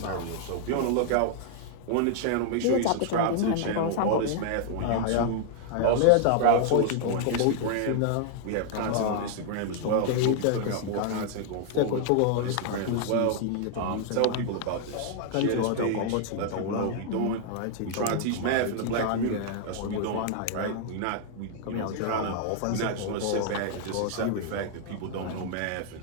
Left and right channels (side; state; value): both; different; correlation 0.00